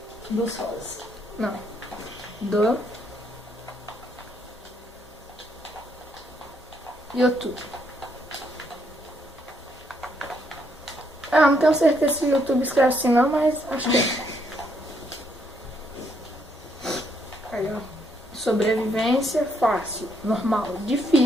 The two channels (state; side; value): normal; both; correlation 0.73